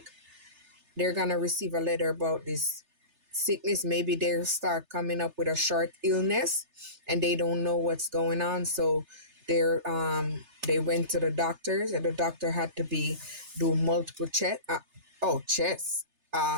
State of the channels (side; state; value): left; late; 3.3 ms